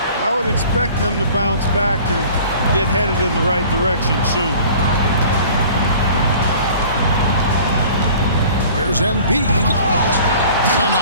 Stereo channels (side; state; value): both; inverted; correlation -0.47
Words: I would expect them to bounce back and get headed in the right direction soon. Here's Embiid.